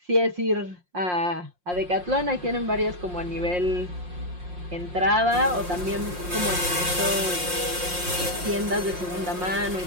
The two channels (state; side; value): late; left; 5.6 ms